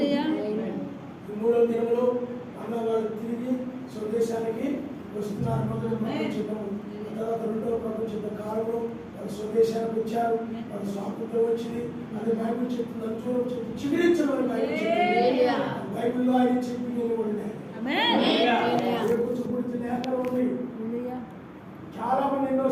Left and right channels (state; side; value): identical; both; correlation 1.00